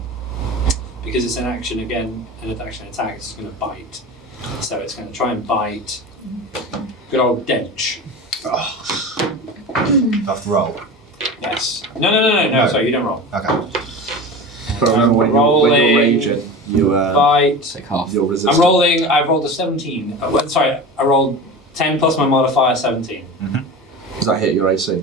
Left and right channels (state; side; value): normal; both; correlation 0.30